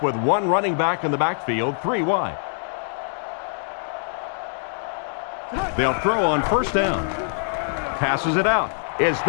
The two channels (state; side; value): silent; right; digital silence